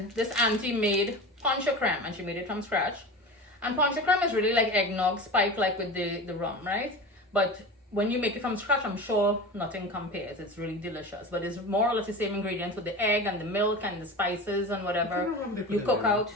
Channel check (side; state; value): both; normal; correlation 0.30